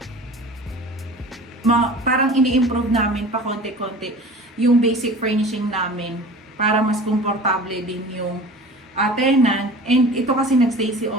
Parang ini-improve namin pa konti-konti yung basic furnishing namin para mas komportable din yung tenant. And ito kasi nagstay si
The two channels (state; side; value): normal; both; correlation 0.40